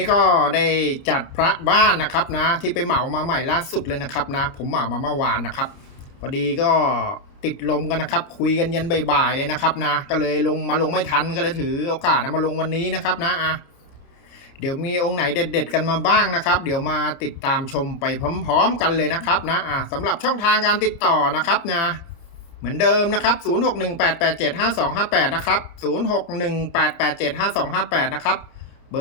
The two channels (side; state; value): right; late; 29 ms